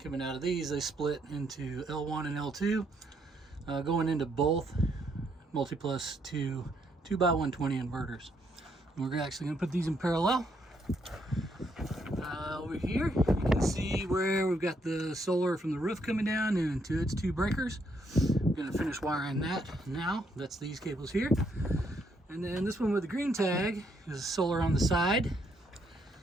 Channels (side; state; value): both; normal; correlation 0.73